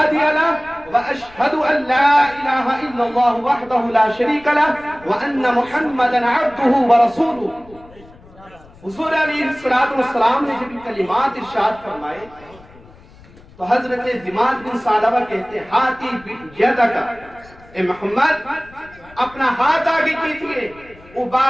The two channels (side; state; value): left; noise; rumble, 24 dB below the sound